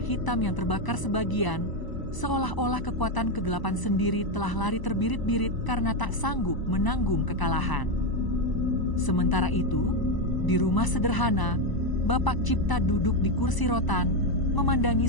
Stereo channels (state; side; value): late; right; 1.0 ms